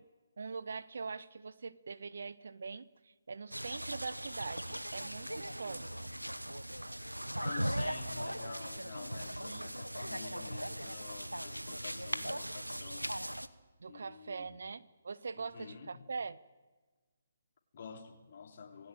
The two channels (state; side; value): inverted; both; correlation -0.96